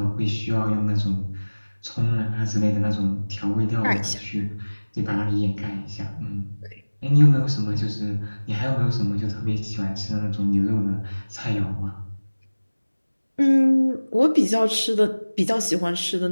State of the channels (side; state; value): both; inverted; correlation -1.00